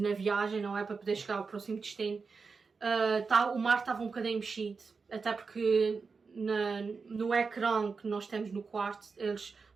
na viagem, não é? Para poder chegar ao próximo destino. O mar estava um bocadinho mexido, até porque no ecrã que nós temos no quarto, eles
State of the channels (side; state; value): left; quieter; 4.8 dB